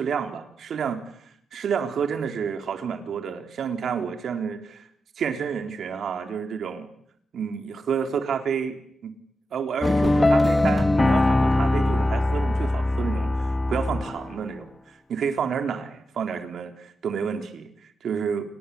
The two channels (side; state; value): both; normal; correlation 0.88